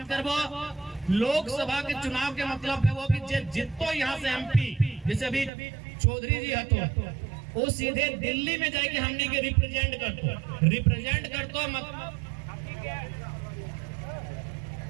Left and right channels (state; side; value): drops out; left; at 5.5 s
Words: करबो, लोकसभा के चुनाव के मतलब है वो कि जितो यहाँ से एमपी, जैसे अभी चौधरी जी हतो वो सीधे दिल्ली में जाके हमनी के रिप्रेजेंट करतो